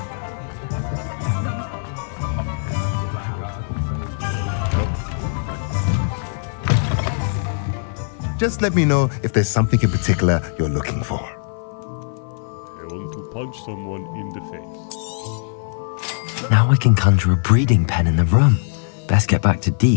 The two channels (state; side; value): silent; right; 56 dB below the other